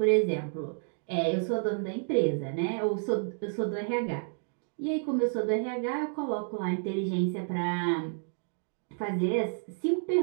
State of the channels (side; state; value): left; silent; digital silence